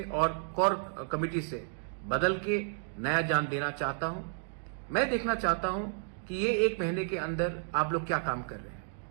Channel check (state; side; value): silent; left; digital silence